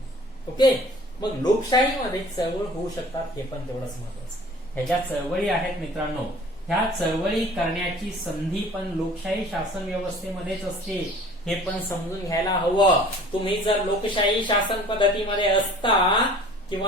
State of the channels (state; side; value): normal; both; correlation 0.48